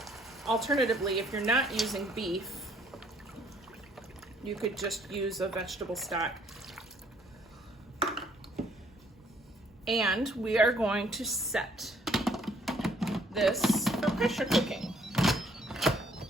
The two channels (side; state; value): both; normal; correlation 0.64